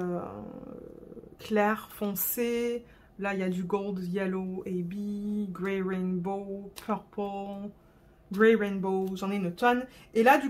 clair, foncé. Là, il y a du gold, yellow, AB, grey rainbow, purple, grey rainbow. J'en ai une tonne. Et là, du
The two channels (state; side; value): identical; both; correlation 1.00